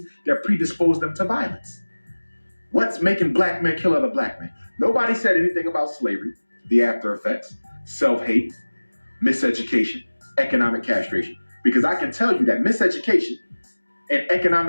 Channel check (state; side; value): inverted; both; correlation -1.00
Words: that predisposed them to violence. What's making black men kill other black men? Nobody said anything about slavery, the after effects, self-hate, miseducation, economic castration. Because I can tell you that miseducation and